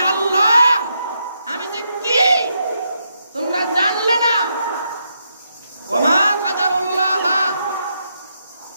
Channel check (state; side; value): inverted; both; correlation -0.81